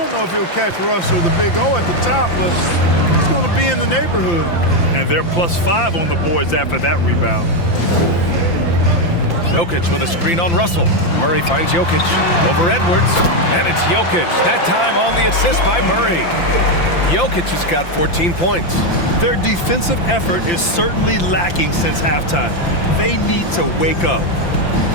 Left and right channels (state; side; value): late; right; 5.8 ms